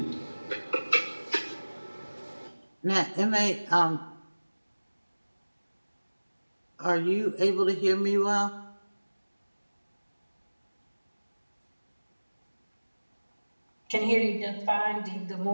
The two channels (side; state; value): both; inverted; correlation -1.00